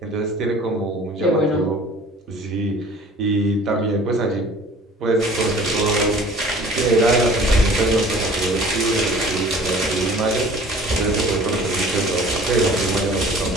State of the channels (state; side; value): normal; both; correlation 0.48